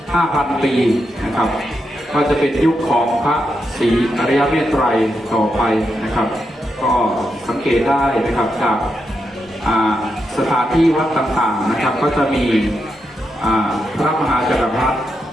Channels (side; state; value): both; normal; correlation 0.84